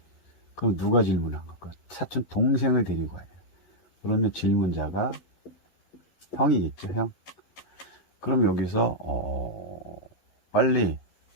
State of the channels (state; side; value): late; right; 11 ms